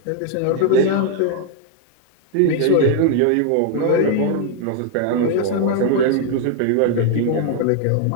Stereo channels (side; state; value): both; different; correlation 0.00